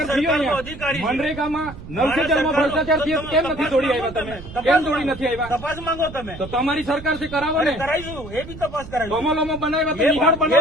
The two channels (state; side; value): noise; right; rumble, 14 dB below the sound